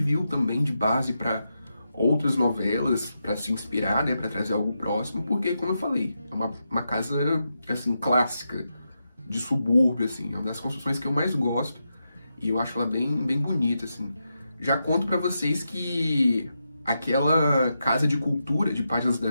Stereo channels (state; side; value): inverted; both; correlation -0.86